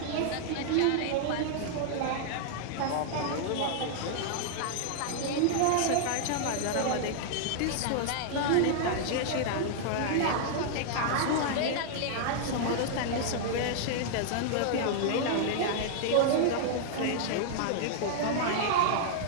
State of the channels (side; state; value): both; different; correlation -0.01